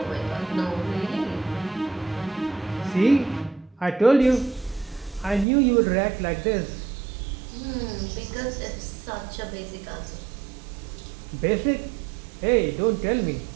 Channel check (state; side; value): drops out; left; at 5.5 s